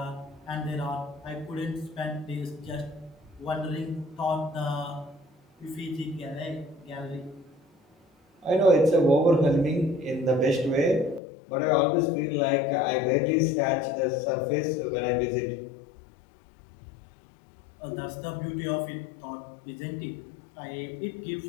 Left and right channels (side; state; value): right; drops out; at 11.2 s